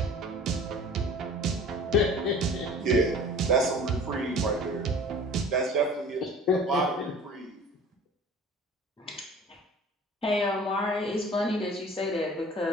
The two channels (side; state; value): both; normal; correlation 0.44